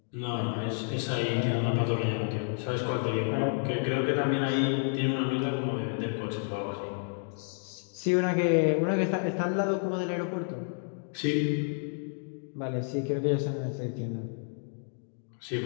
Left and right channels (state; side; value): silent; right; 58 dB below the other